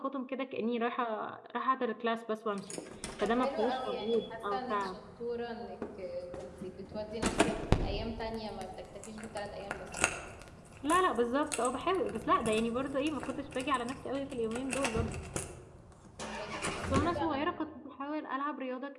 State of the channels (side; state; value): both; identical; correlation 1.00